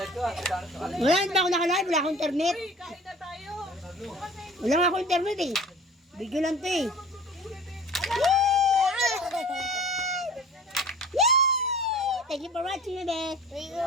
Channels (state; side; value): normal; both; correlation 0.44